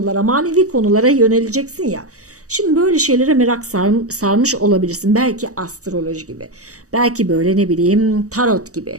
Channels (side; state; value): left; late; 0.66 ms